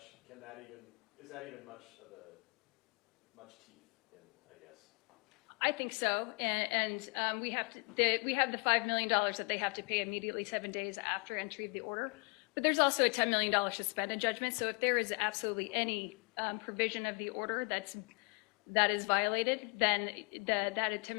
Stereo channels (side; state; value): right; quieter; 34.1 dB